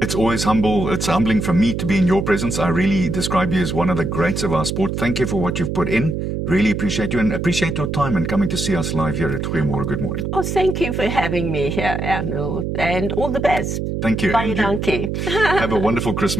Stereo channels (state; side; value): noise; right; hum, 2 dB below the sound